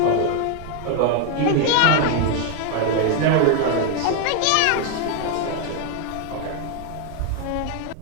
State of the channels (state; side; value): different; both; correlation 0.01